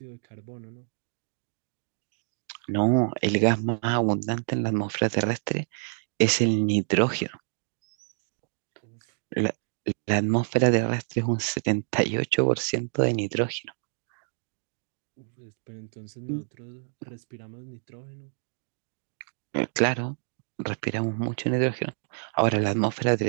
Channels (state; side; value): silent; left; digital silence